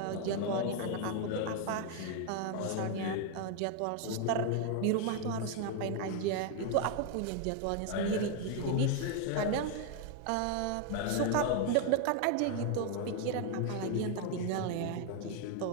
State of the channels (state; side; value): different; both; correlation 0.01